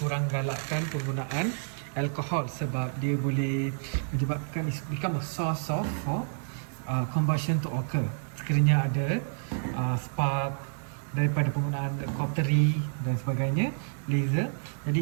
galakkan penggunaan alkohol sebab dia boleh menyebabkan become a source of combustion to occur. Sekiranya ada spark daripada penggunaan cautery dan sebagainya, laser.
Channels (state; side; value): silent; left; digital silence